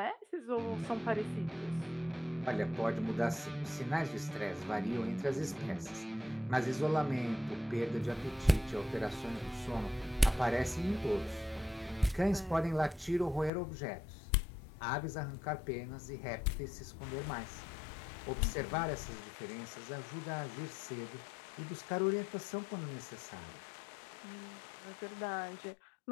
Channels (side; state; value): right; drops out; at 13.5 s